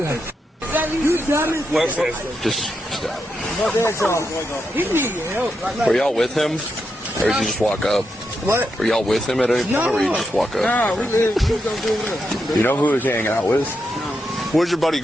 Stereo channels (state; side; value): normal; both; correlation 0.84